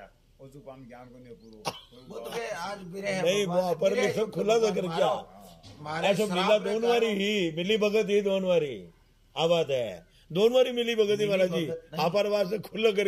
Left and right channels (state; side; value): identical; both; correlation 1.00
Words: और जो काम ज्ञान को नहीं पूरो वो तो आज बिरह नहीं वो पर भी सब खुला तो कर क्या ऐसा मिला दोनों वारी ही मिली भगत ही दोनों वारी आ बात है। दोनों बारी मिली भगत महाराज जी, भगत नहीं। आप से खुला